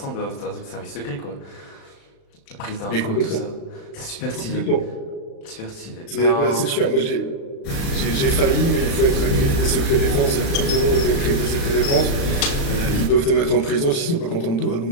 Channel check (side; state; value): right; late; 36 ms